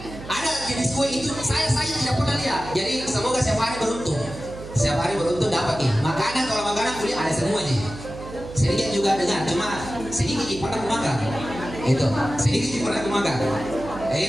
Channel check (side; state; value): right; noise; hum, 13 dB below the sound